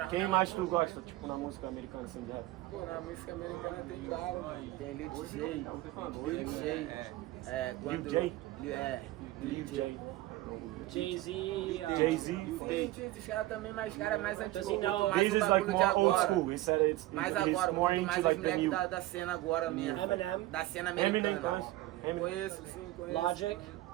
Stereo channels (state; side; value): quieter; left; 17.1 dB